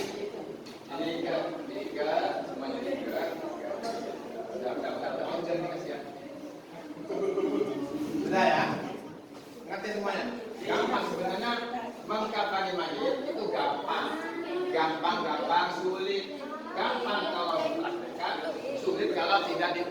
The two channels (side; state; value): both; identical; correlation 1.00